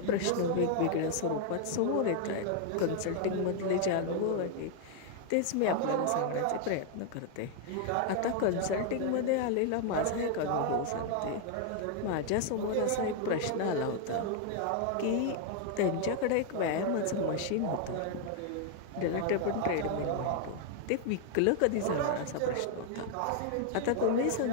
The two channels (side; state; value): both; different; correlation 0.00